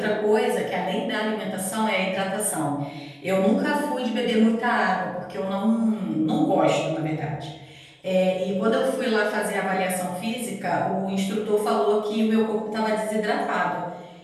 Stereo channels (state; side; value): identical; both; correlation 1.00